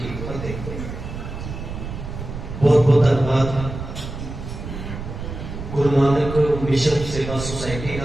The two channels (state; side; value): noise; right; rumble, 8 dB below the sound